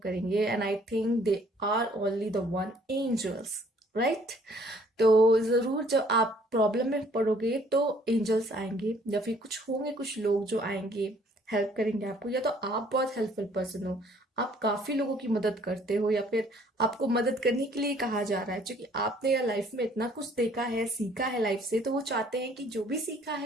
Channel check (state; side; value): normal; both; correlation 0.60